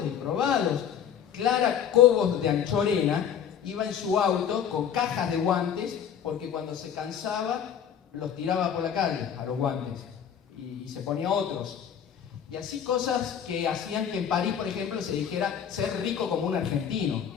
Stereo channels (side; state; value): right; quieter; 8.6 dB